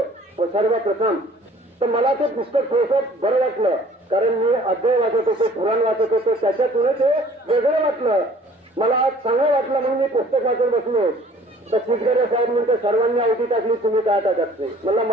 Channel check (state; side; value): normal; both; correlation 0.53